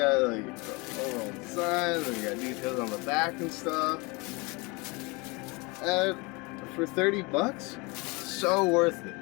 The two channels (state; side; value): quieter; right; 27.1 dB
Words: like overall design, and you got details on the back and stuff. And for 30 bucks, so worth